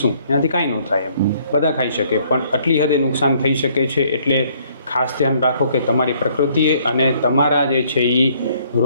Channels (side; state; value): both; inverted; correlation -0.64